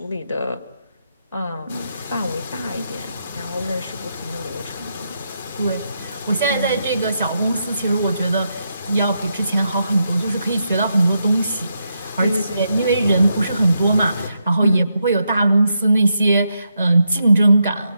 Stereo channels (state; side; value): inverted; both; correlation -0.82